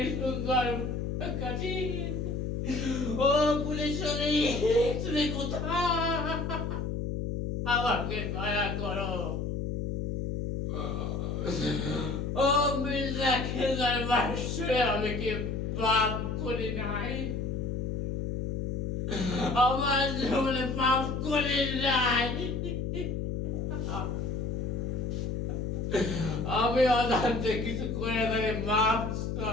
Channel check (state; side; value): noise; left; hum, 2 dB below the sound